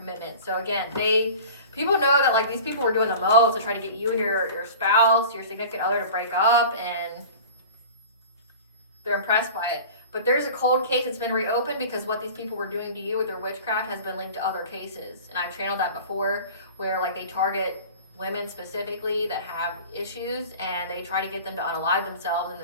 So again, people know that like these people were doing the most to try to get you and your spouse, your significant other to break up, and they're impressed by it. But there's a cold case that's been reopened because what these people were doing to you with their witchcraft has been linked to other cases. And I've channeled that before, where like they target women specifically that have issues, and they try to get them to unalive themselves, and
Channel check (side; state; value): both; inverted; correlation -0.39